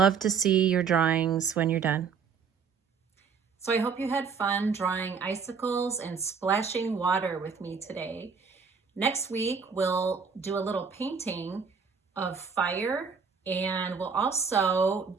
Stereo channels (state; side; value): quieter; left; 5.9 dB